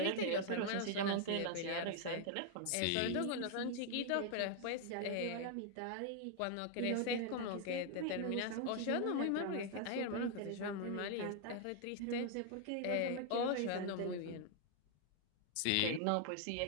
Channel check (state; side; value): different; both; correlation 0.00